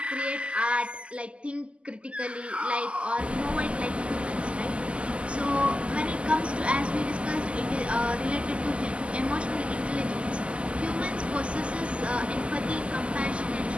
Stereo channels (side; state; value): left; late; 0.055 ms